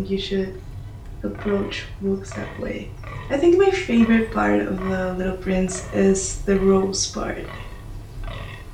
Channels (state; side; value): identical; both; correlation 1.00